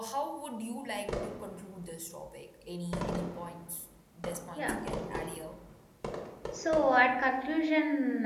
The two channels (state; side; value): identical; both; correlation 1.00